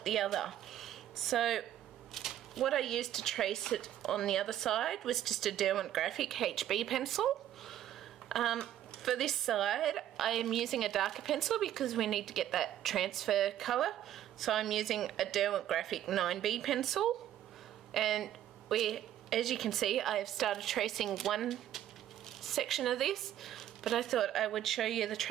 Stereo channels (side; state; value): left; quieter; 11.8 dB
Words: the other. So what I used to trace it on the other side was just a Derwent Graphic HB pencil. For this side, I am using a darker pencil because we need to get that transfer colour. So I'm using a Derwent Graphic 9B pencil. And as you can see, I have started tracing one section of this, but I thought I would show you the